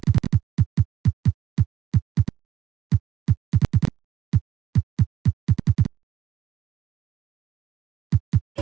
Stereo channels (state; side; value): quieter; left; 10.8 dB